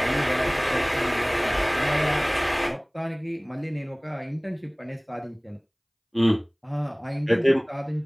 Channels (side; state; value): both; identical; correlation 1.00